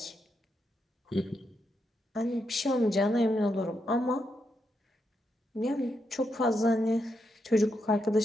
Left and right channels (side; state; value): both; normal; correlation 0.82